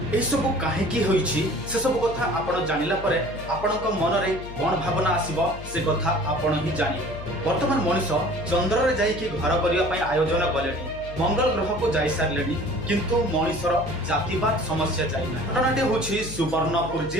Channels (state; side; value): noise; left; hum, 13 dB below the sound